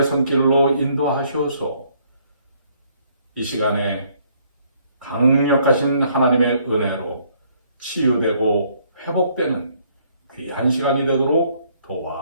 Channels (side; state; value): both; inverted; correlation -0.66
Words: 손길로 인도하셔서 이 시간에 강력하신 하나님의 은혜로 치유되고 회복되는 귀한 시간이 되도록